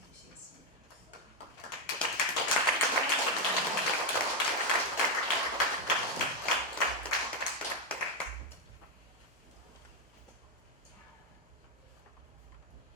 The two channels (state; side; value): normal; both; correlation 0.05